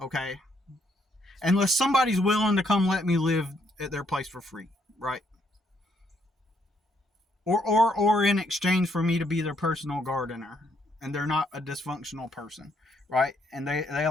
Unless somebody's willing to come let me live at their place for free, right? Or in exchange for me to be their personal gardener, and they're not a dysfunctional person, right? And they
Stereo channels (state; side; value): normal; both; correlation 0.72